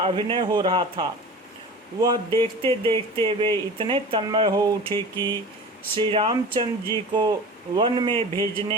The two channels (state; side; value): normal; both; correlation 0.36